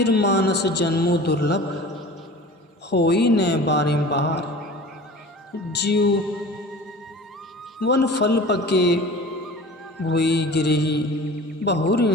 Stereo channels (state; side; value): normal; both; correlation 0.40